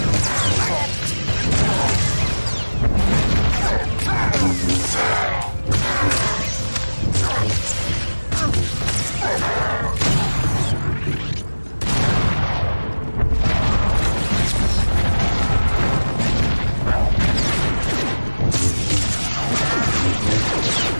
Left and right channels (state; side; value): inverted; both; correlation -1.00